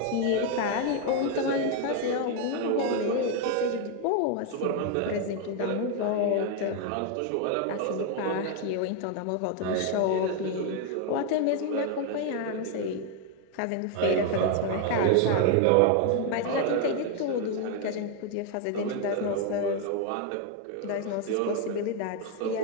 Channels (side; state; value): both; different; correlation 0.00